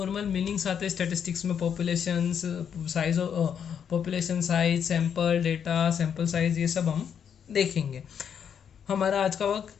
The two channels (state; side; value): quieter; right; 7.9 dB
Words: मीनिंग्स आते हैं स्टेटिस्टिक्स में, population size, sample data, sample size, ये सब हम देखेंगे। हमारा आज का